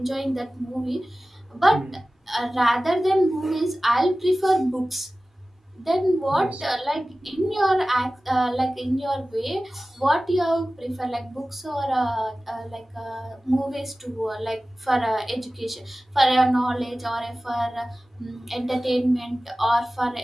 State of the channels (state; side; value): normal; both; correlation 0.96